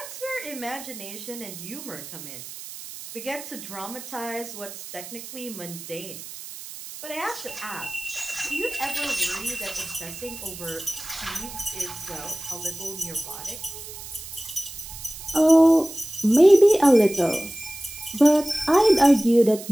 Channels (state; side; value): noise; right; hiss, 12 dB below the sound